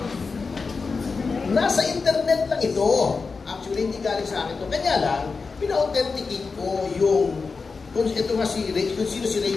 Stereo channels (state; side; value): quieter; right; 4.6 dB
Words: Nasa internet lang ito. Actually, hindi galing sa akin ito. Kanya lang, pina-authenticate ko yung kung ito nga kung sino si